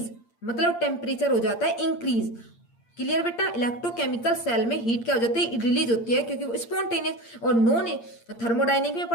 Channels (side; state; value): right; late; 8.7 ms